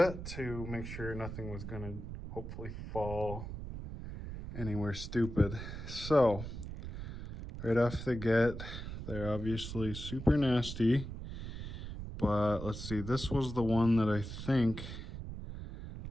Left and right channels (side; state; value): right; noise; rumble, 8 dB below the sound